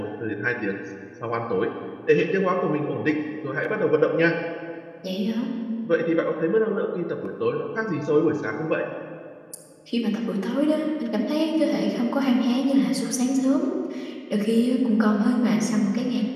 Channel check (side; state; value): both; identical; correlation 1.00